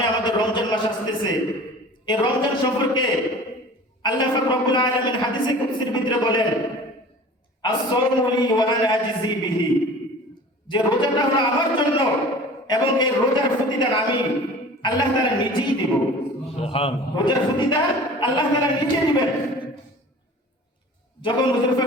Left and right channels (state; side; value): normal; both; correlation 0.42